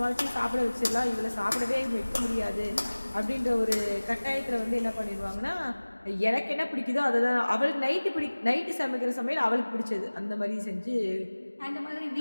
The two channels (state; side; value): inverted; both; correlation -1.00